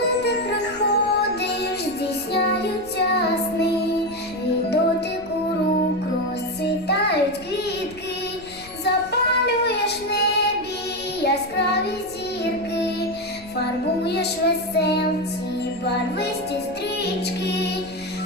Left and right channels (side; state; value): left; noise; rumble, 21 dB below the sound